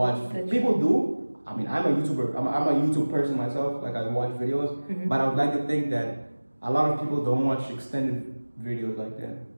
People do. I mean, I'm a YouTuber. I'm a YouTube person myself. Like I watch videos, but I would like to think that a lot of people don't watch extended videos like that.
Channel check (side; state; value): both; inverted; correlation -1.00